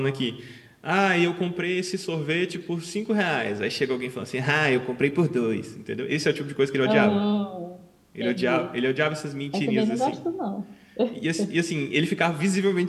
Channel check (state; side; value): identical; both; correlation 1.00